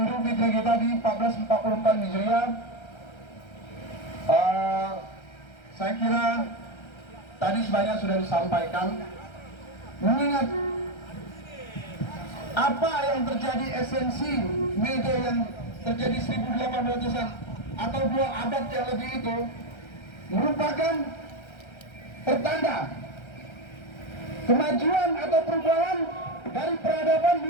Fitri kita di 1444 Hijriah. Saya kira tadi sebanyak sudah disampaikan. Mengingat apa yang terjadi esensi media yang terjadi 1800-an atau 2 abad yang lebih itu merupakan pertanda kemajuan atau perubahan dari peradaban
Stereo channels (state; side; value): late; right; 1.3 ms